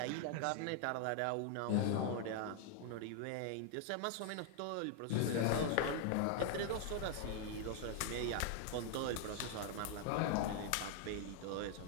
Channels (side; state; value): both; different; correlation 0.00